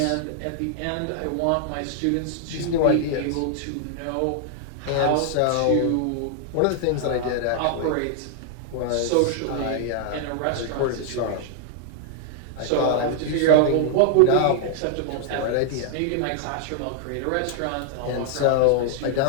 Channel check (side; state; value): both; different; correlation -0.01